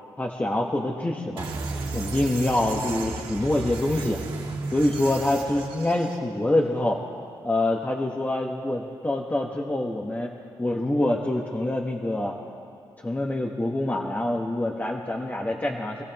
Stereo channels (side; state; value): both; normal; correlation 0.91